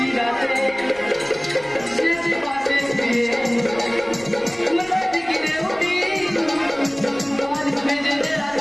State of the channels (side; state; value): right; noise; rumble, 23 dB below the sound